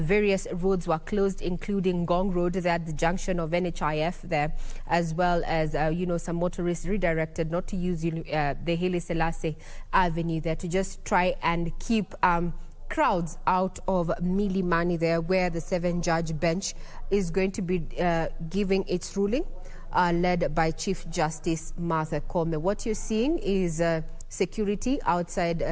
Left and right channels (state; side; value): identical; both; correlation 1.00